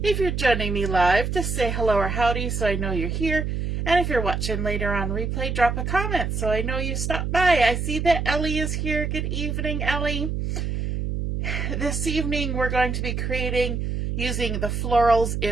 If you're joining me live, just say hello or howdy so I know you're here. And if you're watching later on replay, drop a comment so I know you stopped by. I see that Ellie is here. Good evening, Ellie. This evening we're going to be creating using the Florals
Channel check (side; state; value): right; noise; hum, 2 dB below the sound